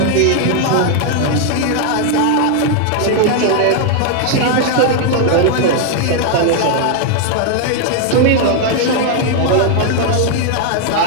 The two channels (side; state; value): both; different; correlation 0.00